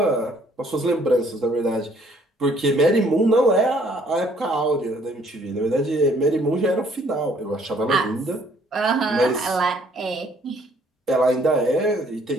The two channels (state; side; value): normal; both; correlation 0.62